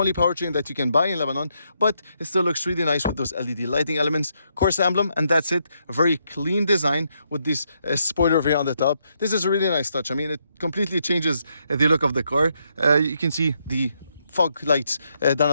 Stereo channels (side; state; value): both; inverted; correlation -0.77